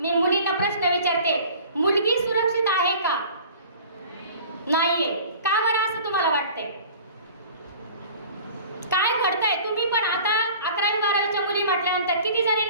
मुलींना प्रश्न विचारते, मुलगी सुरक्षित आहे का? नाहीये. का बरं असं तुम्हाला वाटतंय? काय घडतंय? तुम्ही पण आता 11वी 12वीच्या मुली म्हटल्यानंतर किती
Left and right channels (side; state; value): both; inverted; correlation -0.44